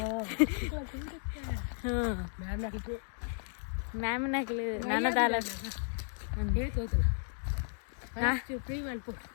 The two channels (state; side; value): silent; right; digital silence